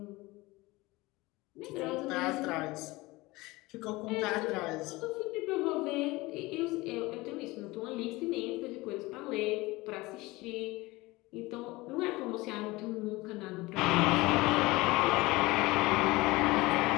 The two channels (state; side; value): quieter; right; 21.2 dB